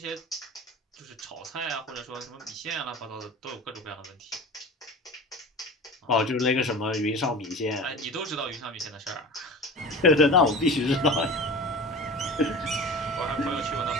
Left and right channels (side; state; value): both; normal; correlation 0.35